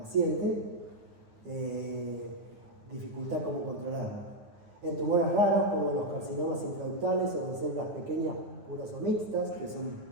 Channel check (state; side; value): late; left; 9.4 ms